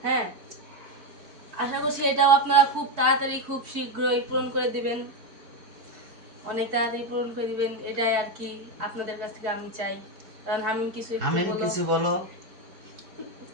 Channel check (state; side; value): late; left; 4.5 ms